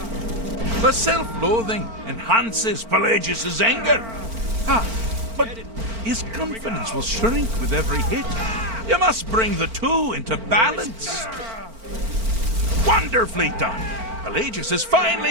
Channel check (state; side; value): late; left; 4.4 ms